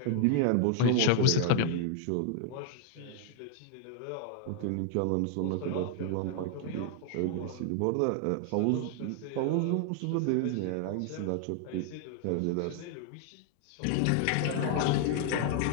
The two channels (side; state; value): both; different; correlation 0.00